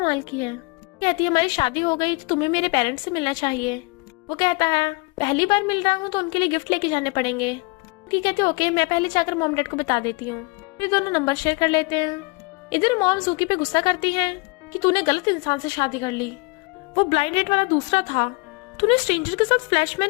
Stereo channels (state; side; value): quieter; right; 28.0 dB